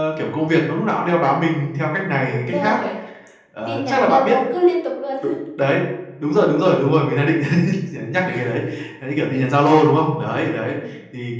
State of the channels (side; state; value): both; identical; correlation 1.00